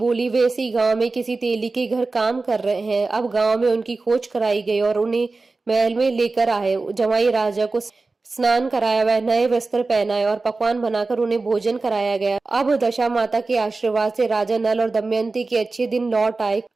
वे इसी गांव में किसी तेली के घर काम कर रहे हैं। अब गांव में उनकी खोज कराई गई और उन्हें महल में लेकर आए। जमाई राजा को स्नान कराया, वह नए वस्त्र पहनाए और पकवान बनाकर उन्हें भोजन कराया गया। अब दशा माता के आशीर्वाद से राजा नल और दमयंती के अच्छे दिन लौट आए।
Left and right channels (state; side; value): quieter; left; 3.7 dB